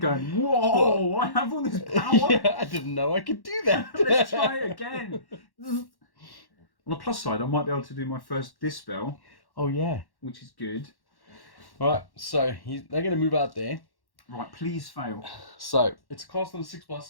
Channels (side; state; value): right; late; 1.1 ms